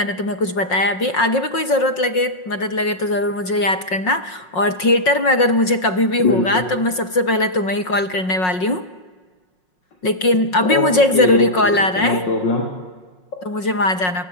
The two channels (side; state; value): right; late; 5.5 ms